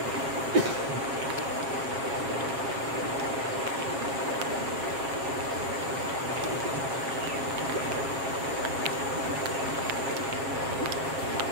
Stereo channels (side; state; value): left; late; 7.7 ms